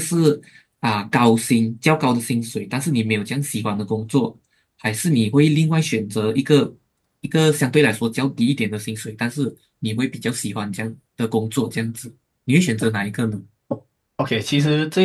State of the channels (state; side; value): identical; both; correlation 1.00